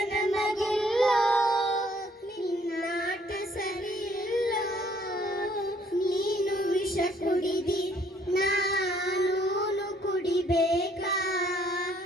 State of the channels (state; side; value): normal; both; correlation 0.64